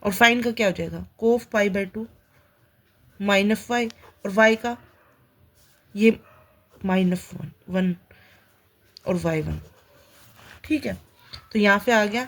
और फाइन का क्या हो जाएगा? Cos pi by two minus y और y का ये माइनस वन और y1। ठीक है, तो यहाँ पे आ गया,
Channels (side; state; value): both; identical; correlation 1.00